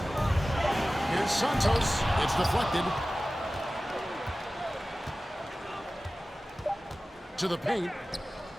Here's Santos. It's deflected. To the paint.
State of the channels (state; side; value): normal; both; correlation 0.96